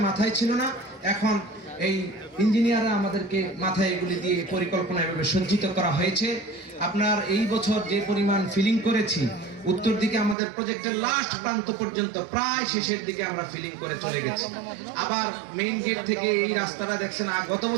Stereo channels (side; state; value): left; drops out; at 10.4 s